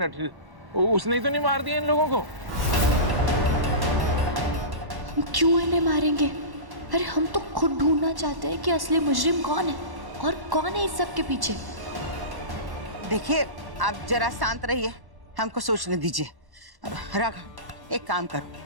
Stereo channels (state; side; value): late; left; 1.1 ms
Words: उसने ही तो नहीं मार दिया इन लोगों को? हम क्यों इन्हें मारेंगे? अरे हम तो खुद ढूंढना चाहते हैं कि असली मुजरिम कौन है और कौन है इस सब के पीछे। देखिए, आप जरा शांत रहिए, हमको सोचने दीजिए। राघव, एक काम